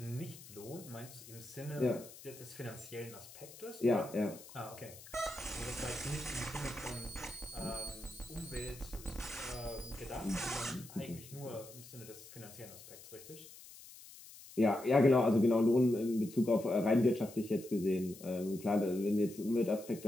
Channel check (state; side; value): noise; left; hiss, 17 dB below the sound